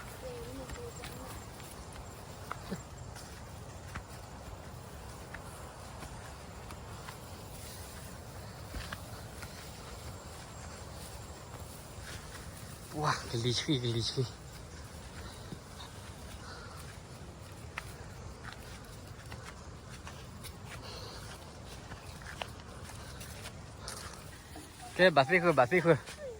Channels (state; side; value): identical; both; correlation 1.00